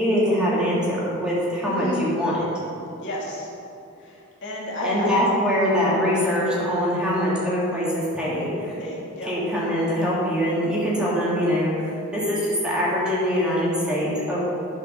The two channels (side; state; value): both; normal; correlation 0.38